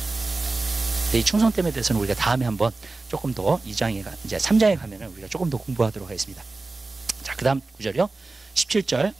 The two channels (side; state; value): left; quieter; 3.4 dB